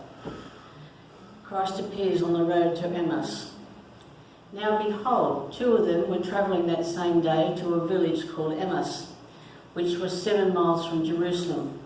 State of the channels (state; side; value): identical; both; correlation 1.00